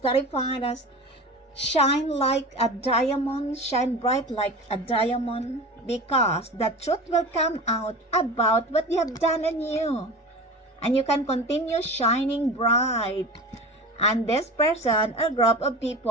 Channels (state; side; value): normal; both; correlation 0.33